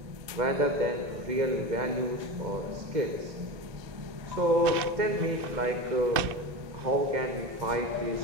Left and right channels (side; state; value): left; late; 1.9 ms